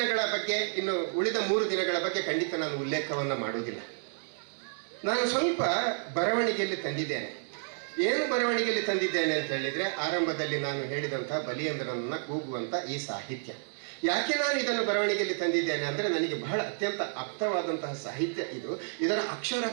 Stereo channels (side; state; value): left; silent; digital silence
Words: ಬಗ್ಗೆ, ಇನ್ನು ಉಳಿದ 3 ದಿನಗಳ ಬಗ್ಗೆ ಖಂಡಿತ ನಾನು ಉಲ್ಲೇಖವನ್ನು ಮಾಡುವುದಿಲ್ಲ. ನಾನು ಸ್ವಲ್ಪ ಬರವಣಿಗೆಯಲ್ಲಿ ತಂದಿದ್ದೇನೆ. ಏನು ಬರವಣಿಗೆಯಲ್ಲಿ ತಂದಿದ್ದೇನೆ ಅಂತ ಹೇಳಿದರೆ, ಆರಂಭದಲ್ಲಿ ನಾನು ಹೇಳಿದಂಥ ಬಲಿಯಂದ್ರನನ್ನು ಕೂಗುವಂಥ ಈ ಸಾಹಿತ್ಯ. ಯಾಕೆ ನಾನು ಇದನ್ನು ಬರವಣಿಗೆಯಲ್ಲಿ ತಂದಿದ್ದೇನೆ ಅಂದರೆ, ನನಗೆ ಬಹಳ ಅತ್ಯಂತ ಆಪ್ತವಾದಂತಹ ಸಾಹಿತ್ಯ ಇದು. ಇದರ